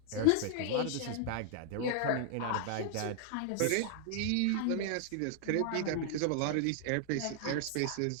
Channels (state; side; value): different; both; correlation 0.00